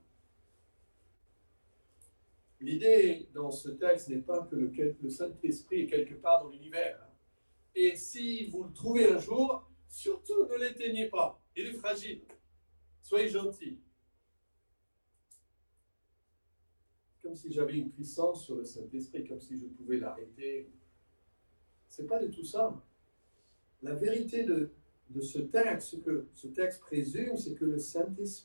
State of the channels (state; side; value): inverted; both; correlation -1.00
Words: L'idée dans ce texte n'est pas que le Saint-Esprit est quelque part dans l'univers. Et si vous le trouvez un jour, surtout ne l'éteignez pas. Il est fragile. Soyez gentils. Comme si j'avais une puissance sur le Saint-Esprit, comme si je pouvais l'arrêter. Ce n'est pas du tout ça. La vérité de ce texte, ce que ce texte présume, c'est que le